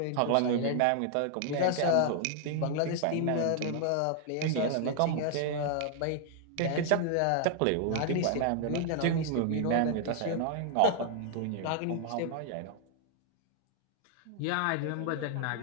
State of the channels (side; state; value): both; different; correlation 0.00